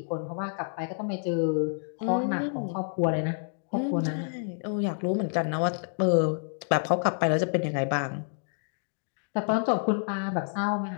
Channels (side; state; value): right; silent; digital silence